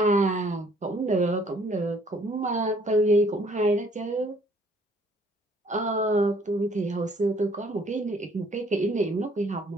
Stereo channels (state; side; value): normal; both; correlation 0.61